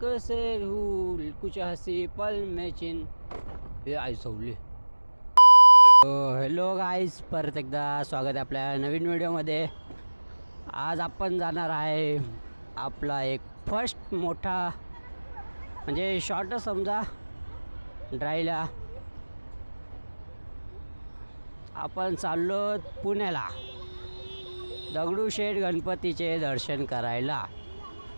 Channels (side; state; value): both; inverted; correlation -1.00